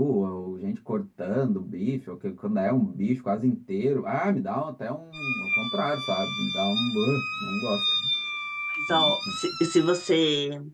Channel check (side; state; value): both; identical; correlation 1.00